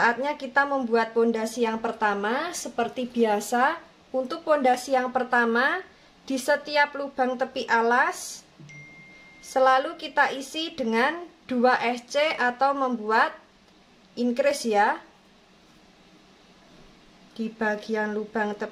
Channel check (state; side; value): identical; both; correlation 1.00